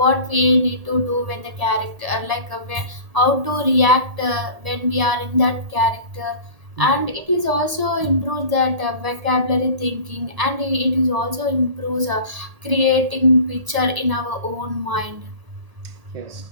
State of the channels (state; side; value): late; left; 1.8 ms